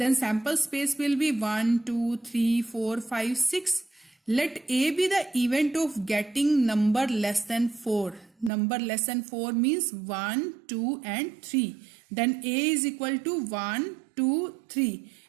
sample space will be 1, 2, 3, 4, 5, 6. Let A be the event of getting number less than 4. Number less than 4 means 1, 2 and 3. Then A is equal to 1, 2, 3.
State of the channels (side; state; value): left; drops out; at 8.5 s